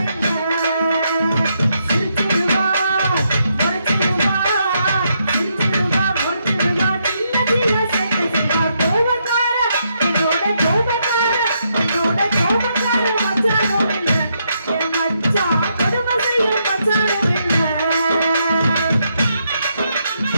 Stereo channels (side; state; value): both; inverted; correlation -0.78